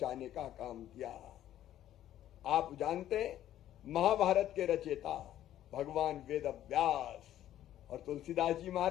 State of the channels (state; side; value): quieter; right; 12.2 dB